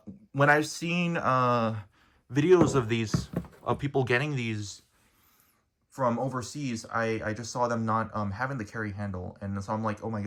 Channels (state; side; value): identical; both; correlation 1.00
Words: When I've seen videos of these, of people getting these from overseas, I just saw them not having the carry handle. And so I'm like, oh my